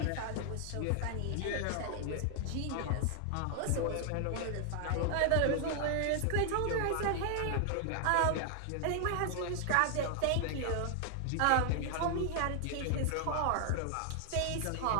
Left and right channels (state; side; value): different; both; correlation 0.00